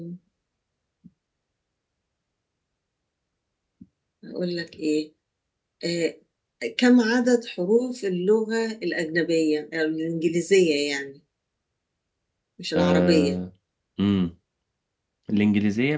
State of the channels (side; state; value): both; identical; correlation 1.00